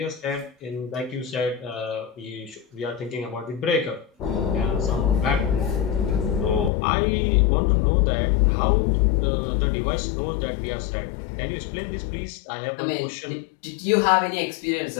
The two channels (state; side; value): drops out; right; at 6.7 s